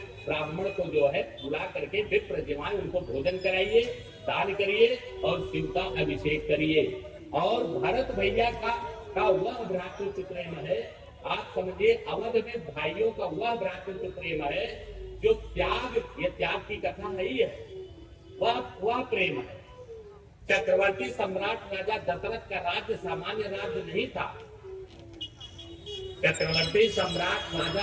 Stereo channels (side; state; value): both; identical; correlation 1.00